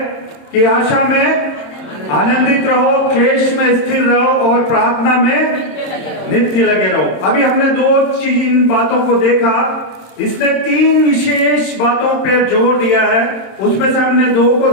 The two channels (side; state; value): right; late; 26 ms